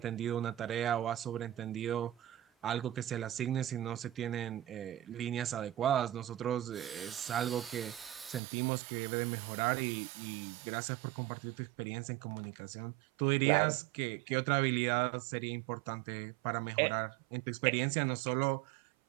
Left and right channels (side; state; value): left; drops out; at 8.4 s